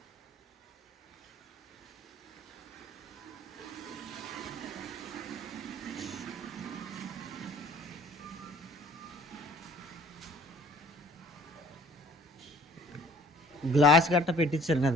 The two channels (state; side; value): normal; both; correlation 0.53